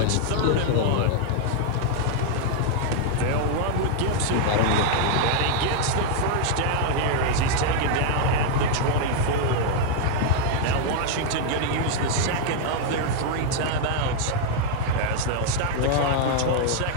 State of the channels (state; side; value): different; both; correlation -0.01